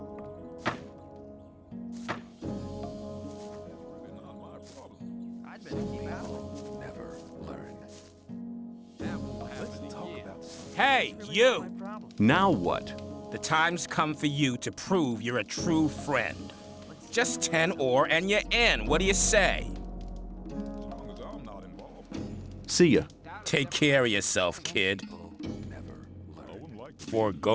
I'd better keep out of it. Never learn. That won't happen Let's talk about Hey, you! Now what? The time's come for you to prove you're a true friend. Just 10 ore and you're in. What do you say? long as I'm not involved. See ya. Take care of yourself, kid. Never learn. For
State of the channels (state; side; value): identical; both; correlation 1.00